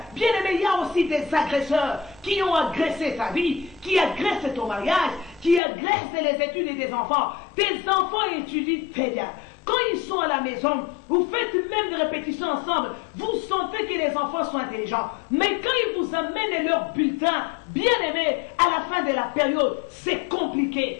Bien aimé, il y a aussi des agresseurs qui ont agressé ta vie, qui agressent ton mariage, qui agressent les études des enfants. Tes enfants étudient très bien. Quand ils sont à la maison, vous faites même des répétitions ensemble, vous sentez que les enfants sont intelligents. Mais quand ils vous amènent leur bulletin, bien aimé, à la fin de la période, c'est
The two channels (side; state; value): right; drops out; at 5.6 s